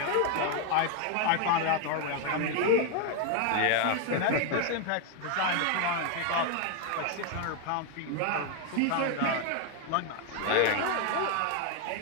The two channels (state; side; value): different; both; correlation 0.01